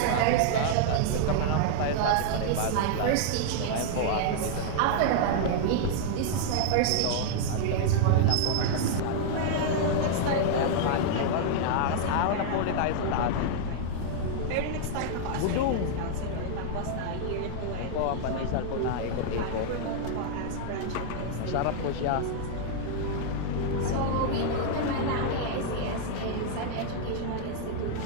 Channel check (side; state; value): both; different; correlation -0.01